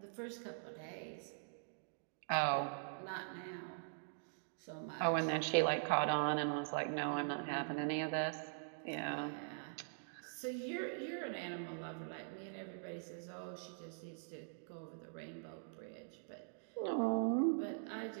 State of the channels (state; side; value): silent; left; digital silence